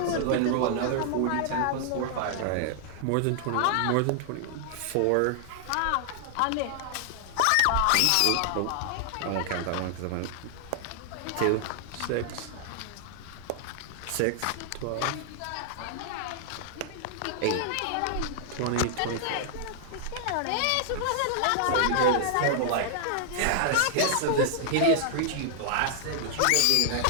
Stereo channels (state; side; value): different; both; correlation -0.01